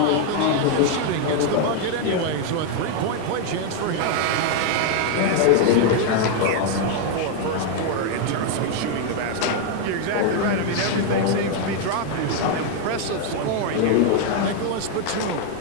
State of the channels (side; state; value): both; different; correlation 0.01